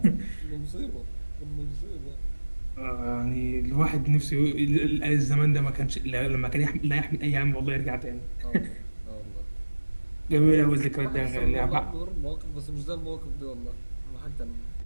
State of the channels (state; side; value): inverted; both; correlation -1.00